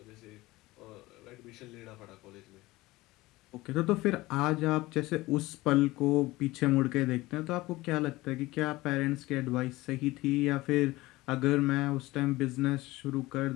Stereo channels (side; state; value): right; quieter; 19.4 dB